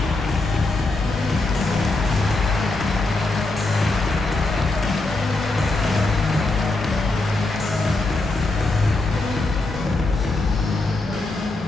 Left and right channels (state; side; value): quieter; right; 3.1 dB